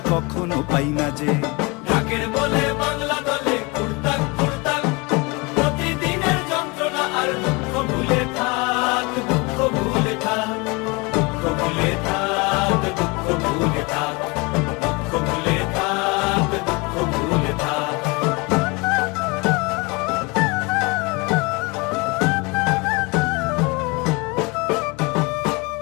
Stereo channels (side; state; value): right; quieter; 27.2 dB